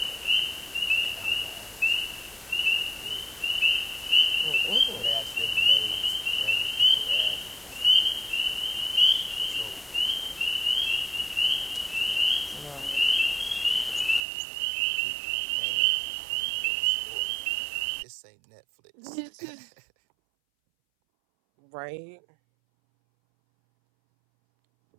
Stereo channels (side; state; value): left; drops out; at 14.2 s